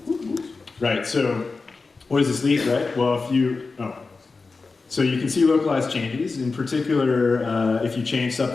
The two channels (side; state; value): right; quieter; 4.1 dB